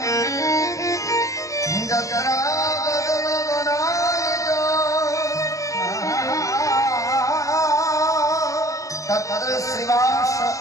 যত্র বদন বনায়িত তত্র শ্রীবাস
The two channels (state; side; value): late; right; 0.16 ms